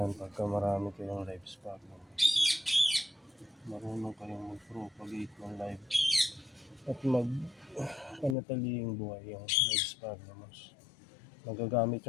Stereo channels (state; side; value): drops out; right; at 8.3 s